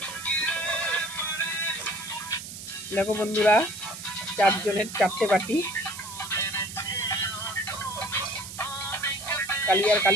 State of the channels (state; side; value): noise; right; hiss, 11 dB below the sound